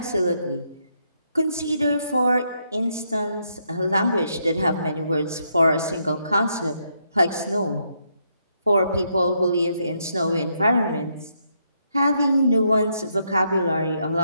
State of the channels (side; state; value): both; inverted; correlation -0.77